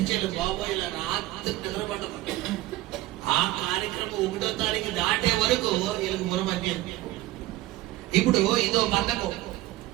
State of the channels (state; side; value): quieter; left; 16.7 dB